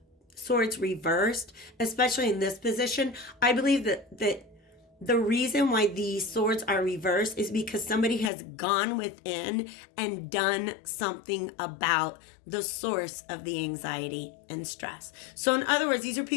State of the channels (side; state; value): right; drops out; at 8.3 s